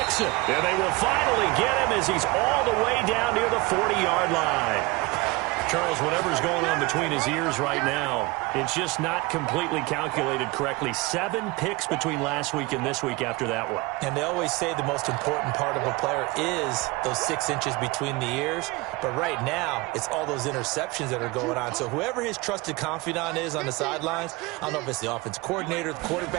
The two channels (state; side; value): quieter; left; 23.1 dB